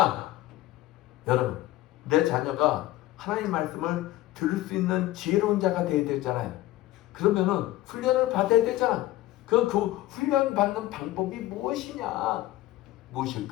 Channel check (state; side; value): quieter; right; 16.1 dB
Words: 여러분, 내 자녀가 하나님 말씀을 들을 수 있는 지혜로운 자가 되어야 되잖아요. 그러면은 훈련을 받아야 되잖아. 그 훈련 받는 방법이 무엇이냐?